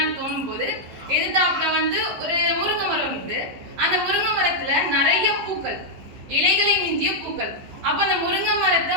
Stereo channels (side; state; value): left; late; 15 ms